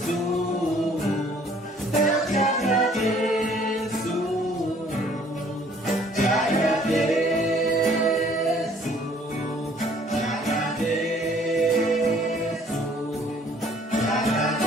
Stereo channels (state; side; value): normal; both; correlation 0.58